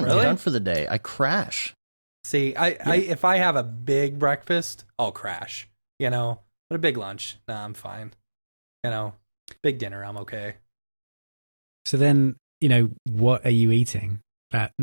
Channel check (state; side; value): inverted; both; correlation -1.00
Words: Really? I'm done for the day. I crash. See, I if I have a big breakfast, I'll crash, you know, but a big lunch, nah, I'm fine. You know, big dinner, I'm okay. So then, you know, what are you eating that